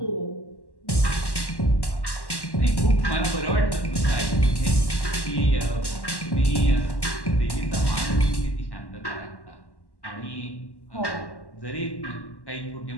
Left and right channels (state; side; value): late; right; 1.1 ms